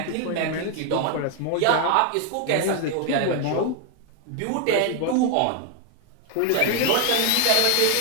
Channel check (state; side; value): different; both; correlation 0.00